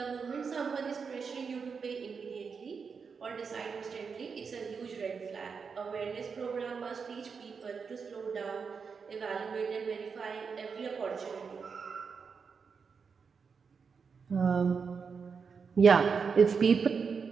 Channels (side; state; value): left; quieter; 5.6 dB